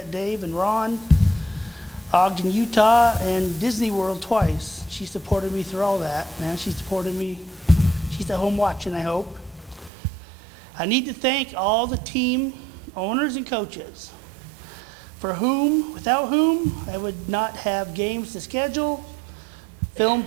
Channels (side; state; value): left; drops out; at 9.9 s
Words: Dave and Ron, Ogden, Utah, and Disney World twice. She supported me through all that, man. She supported me. She's at home watching, I hope. I need to thank all the team owners and coaches, without whom, I would not have games to schedule, film